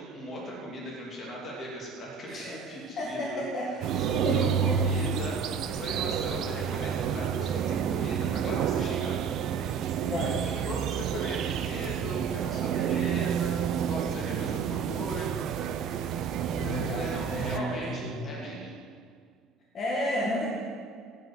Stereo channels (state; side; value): quieter; left; 5.2 dB